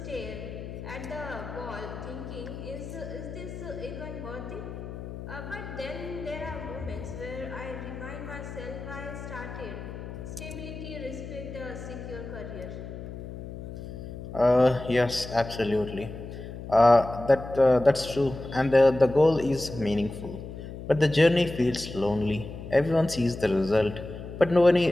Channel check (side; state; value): left; noise; hum, 10 dB below the sound